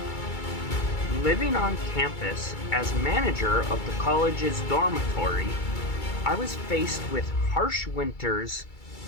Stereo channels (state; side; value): late; right; 2.3 ms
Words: Living on campus as manager of the college's dormitory, I was faced with harsh winters,